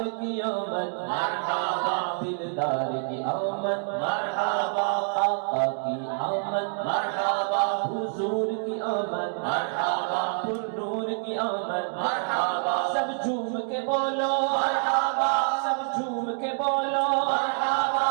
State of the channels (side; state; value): left; silent; digital silence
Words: کی آمد مرحبا دلدار کی آمد مرحبا آقا کی آمد مرحبا حضور کی آمد مرحبا پر نور کی آمد مرحبا سب جھوم کے بولو مرحبا سب جھوم کے بولو مرحبا